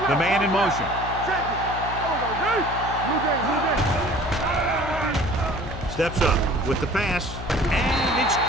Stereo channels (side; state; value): left; noise; hum, 9 dB below the sound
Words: the man in motion. Check it. Blue game. Steps up with the pass, and it's